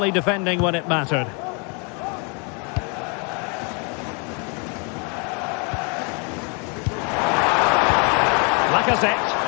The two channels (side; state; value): right; quieter; 35.6 dB